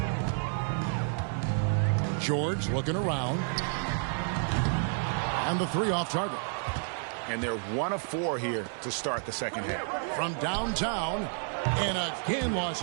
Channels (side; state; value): left; silent; 58 dB below the other